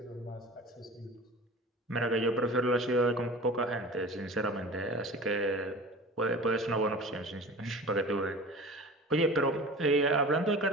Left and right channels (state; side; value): normal; both; correlation 0.38